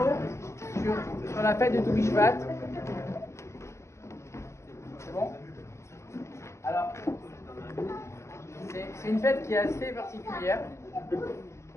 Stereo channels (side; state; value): right; late; 0.14 ms